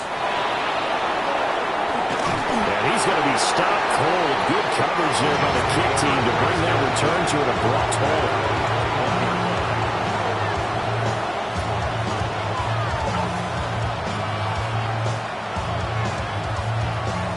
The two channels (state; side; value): identical; both; correlation 1.00